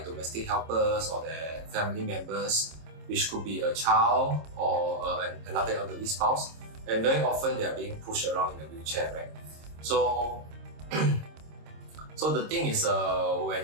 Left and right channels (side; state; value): left; late; 26 ms